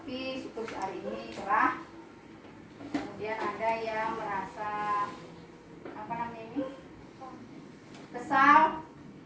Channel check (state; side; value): identical; both; correlation 1.00